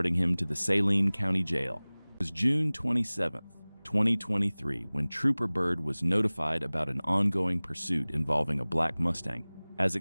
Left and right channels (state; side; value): inverted; both; correlation -1.00